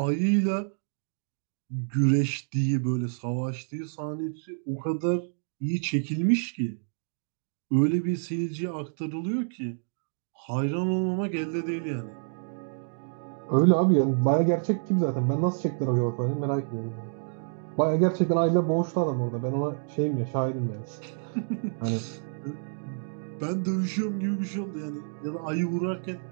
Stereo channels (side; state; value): left; silent; digital silence